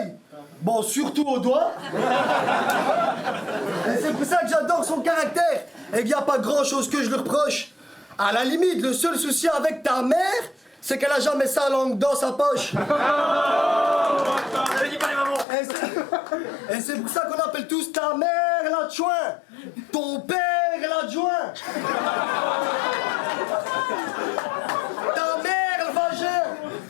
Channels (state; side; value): drops out; right; at 15.5 s